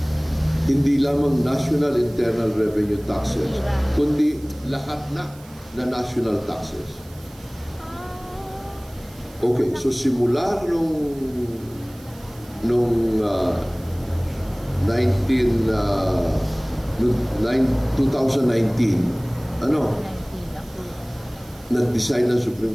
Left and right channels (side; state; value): right; noise; hiss, 24 dB below the sound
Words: hindi lamang national internal revenue taxes, kundi lahat na national taxes. Okay, so simula nung 2019, nag-decide ng Supreme